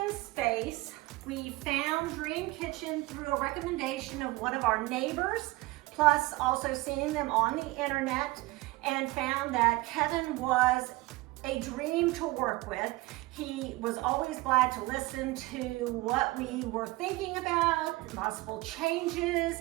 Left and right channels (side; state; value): left; quieter; 21.0 dB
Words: space. We found Dream Kitchen through a recommendation of one of our neighbors, plus also seeing them on the internet, and found that Kevin was a dream to work with. He was always glad to listen to what we were thinking about, possible